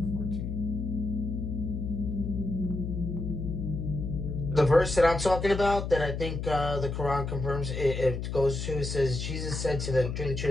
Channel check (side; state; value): left; noise; hum, 4 dB below the sound